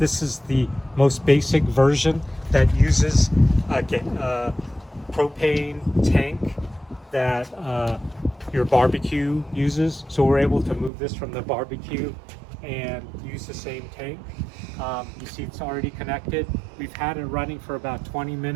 is the most basic version that uses a propane tank that your barbecue uses. So we're able to move this from the barbecue and use the same tank. You see it's already connected. We've had it running for about 20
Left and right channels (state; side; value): drops out; left; at 10.9 s